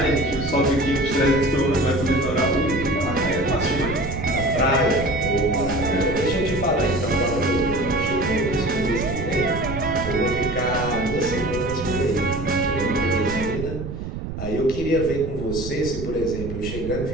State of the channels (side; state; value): right; noise; rumble, 7 dB below the sound